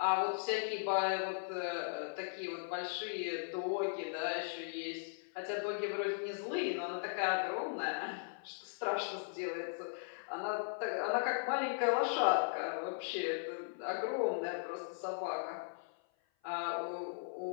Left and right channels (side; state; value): right; silent; 52 dB below the other